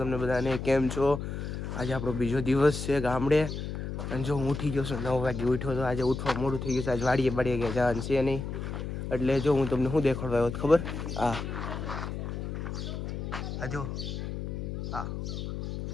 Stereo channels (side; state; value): left; noise; hum, 5 dB below the sound